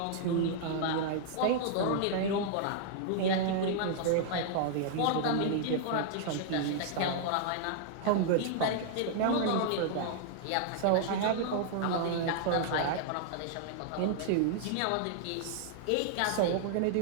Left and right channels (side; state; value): both; different; correlation -0.01